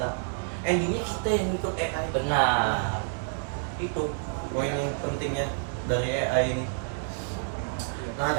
Endingnya kita yang ikut AI. Benar. Itu poin yang pentingnya dari AI ini. Nah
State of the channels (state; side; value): silent; left; digital silence